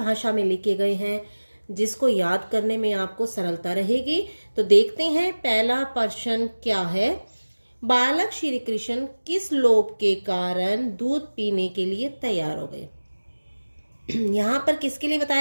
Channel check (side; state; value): both; inverted; correlation -1.00